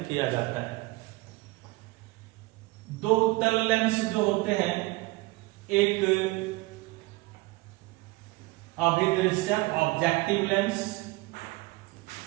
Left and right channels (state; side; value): quieter; left; 22.1 dB